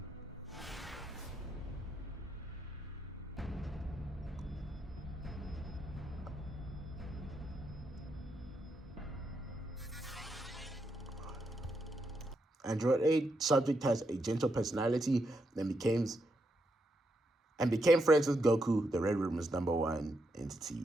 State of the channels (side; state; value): both; normal; correlation 0.81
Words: Android 8 subject has a gentle personality and became friends with Goku. The Red Room is #1